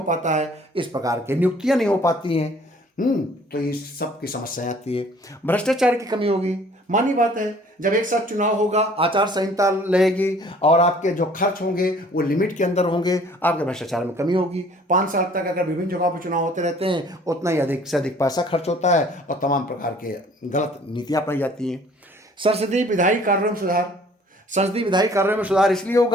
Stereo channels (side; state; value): both; normal; correlation 0.54